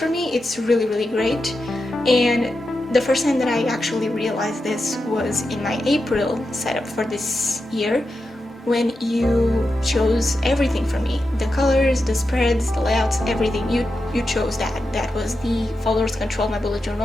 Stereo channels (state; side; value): normal; both; correlation 0.89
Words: me. It's really, really great. And the first time that I actually realized this was in my April setup for this year, when you chose everything for me, the colors, the spreads, the layouts, everything. You chose that. That was the followers control my bullet